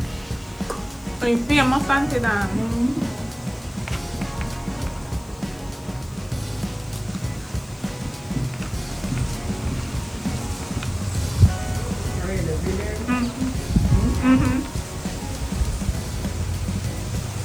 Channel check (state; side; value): noise; left; hiss, 23 dB below the sound